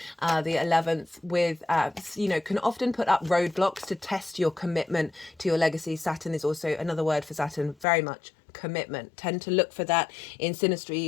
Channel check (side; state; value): right; drops out; at 7.9 s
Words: the 11th with, can often put up roadblocks to test your commitment to your legacy. Saturn is also another word for Saturn, very much commitment. Tend to look for that in